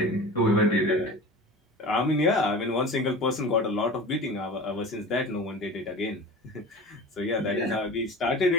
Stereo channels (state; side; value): normal; both; correlation 0.35